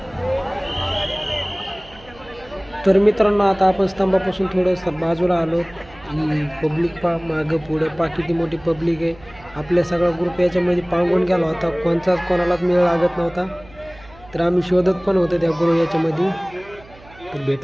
तर मित्रांनो, आता आपण स्तंभापासून थोडं बाजूला आलो. ही पब्लिक पा मागं पुढे पा किती मोठी पब्लिक आहे. आपल्या सगळा ग्रुप याच्यामध्ये पांगून गेला होता. कोणालाच मेळ लागत नव्हता. तर आम्ही शोधत पण होतो त्या ग्रुप याच्यामध्ये, तर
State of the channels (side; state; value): right; noise; hum, 23 dB below the sound